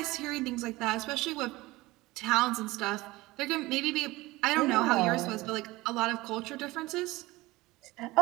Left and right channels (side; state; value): left; quieter; 20.0 dB